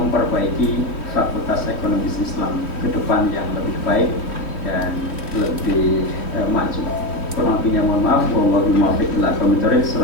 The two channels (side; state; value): right; late; 3.1 ms